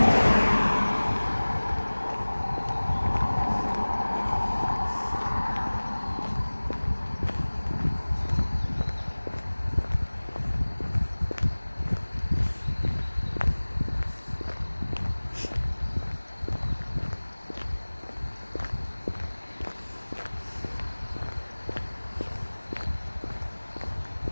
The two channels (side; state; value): both; inverted; correlation -1.00